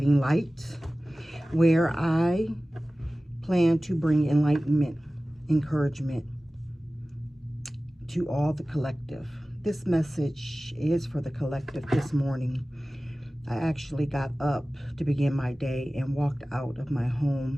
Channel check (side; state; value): both; normal; correlation 0.97